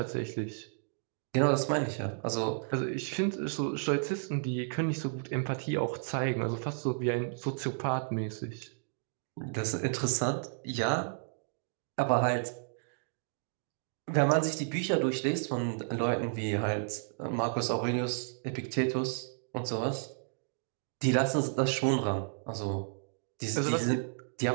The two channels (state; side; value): silent; left; digital silence